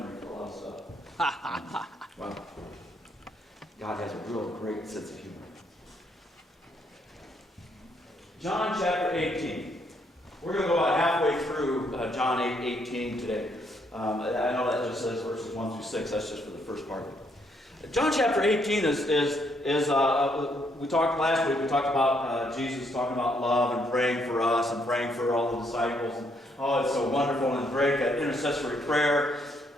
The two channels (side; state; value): both; normal; correlation 0.72